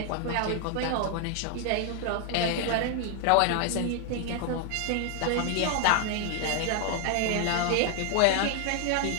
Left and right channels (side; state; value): both; different; correlation 0.00